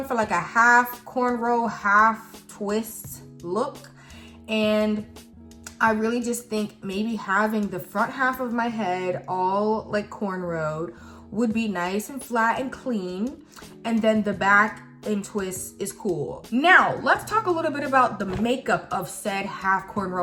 for like a half cornrow, half twist look. And I really just think maybe having the front half of my head all like cornrowed would be nice and flat and clean. And then the back and twist is cool. Now, let's talk a little bit about the makeup of said half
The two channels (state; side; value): identical; both; correlation 1.00